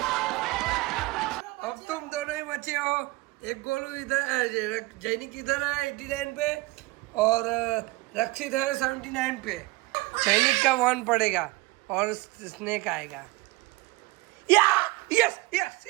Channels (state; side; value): quieter; left; 22.1 dB